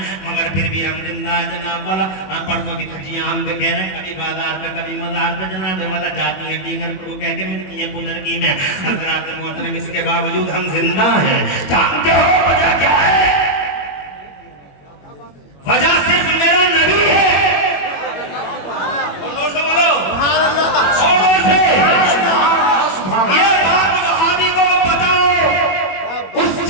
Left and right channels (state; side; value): late; right; 21 ms